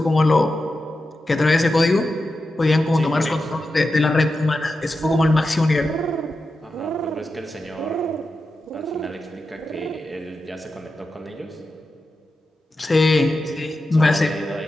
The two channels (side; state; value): both; normal; correlation 0.90